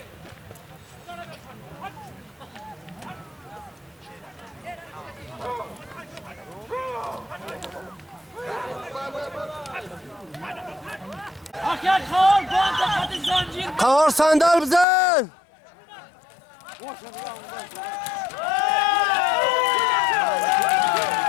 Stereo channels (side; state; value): right; drops out; at 14.9 s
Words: قهار صندل بزن.